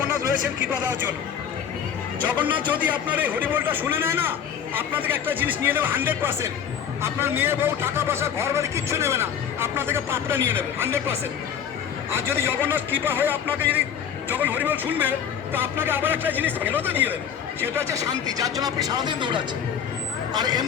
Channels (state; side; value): quieter; right; 8.3 dB